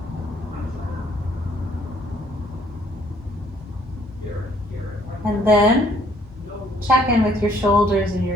And then check in with your shoulders and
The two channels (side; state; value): both; normal; correlation 0.63